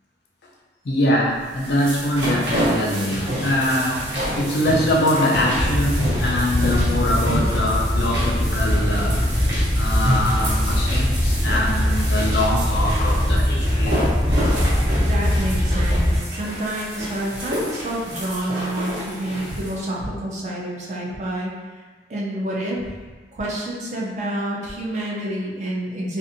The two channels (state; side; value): normal; both; correlation 0.68